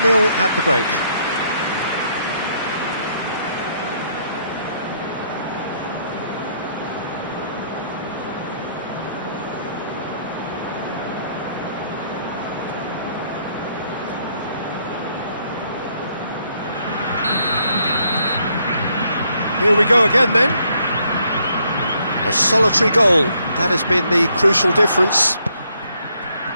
at the break. Here we go again then. A solitary goal, that has been the crucial difference.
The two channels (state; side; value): inverted; both; correlation -0.71